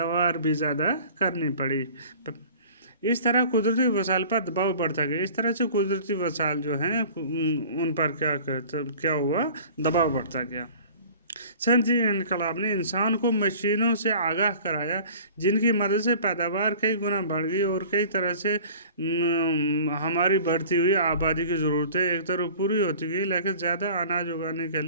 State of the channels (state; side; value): inverted; both; correlation -0.45